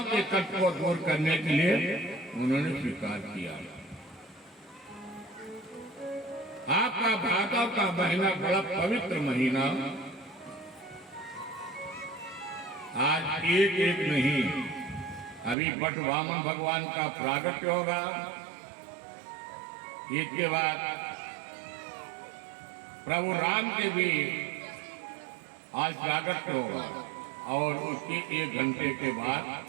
के कष्ट को दूर करने के लिए उन्होंने स्वीकार किया। आपका भादव का महीना बड़ा पवित्र महीना, आज एक एक नहीं, अभी बट वामन भगवान का प्रागट्य होगा। इसके बाद प्रभु राम के भी आज प्रागट्य होगा, और उसके 1 घंटे के बाद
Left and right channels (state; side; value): drops out; left; at 15.6 s